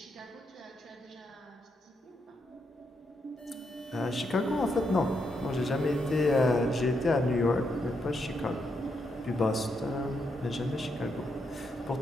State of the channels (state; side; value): normal; both; correlation 0.80